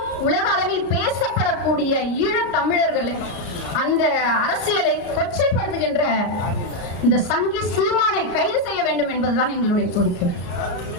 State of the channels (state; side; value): late; right; 34 ms